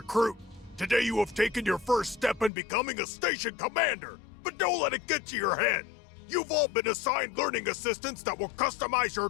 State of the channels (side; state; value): right; drops out; at 2.5 s